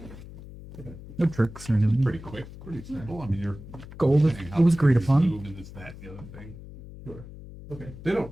No tricks or anything. pretty quick, pretty simple. I mean, you're Gold. saying It how was agreed you upon. move and this, that, and the other thing. Sure. Okay. They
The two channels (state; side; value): noise; left; hum, 15 dB below the sound